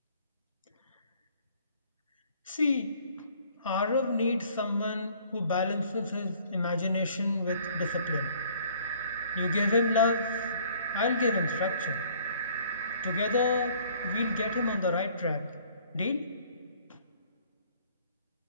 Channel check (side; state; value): both; inverted; correlation -0.58